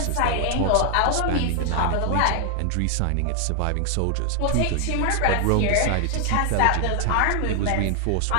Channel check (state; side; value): different; both; correlation 0.00